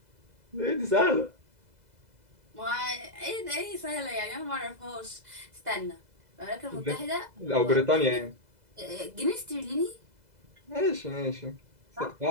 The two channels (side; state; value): left; late; 2.0 ms